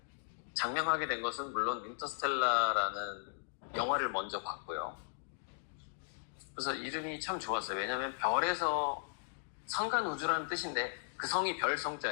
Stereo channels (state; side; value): silent; right; digital silence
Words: 장명하게 된 것은 물론 인터스텔라라는 영화를 먼저 봤고요. 그래서 이름이 참 좋았어요. 왜냐하면 별에서 성간 우주라는 뜻인데 그 성이 별